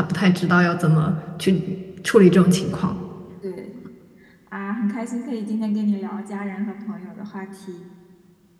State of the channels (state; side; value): identical; both; correlation 1.00